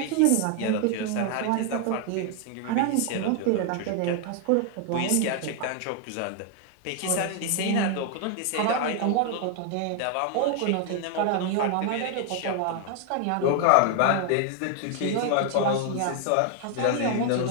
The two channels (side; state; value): both; different; correlation 0.00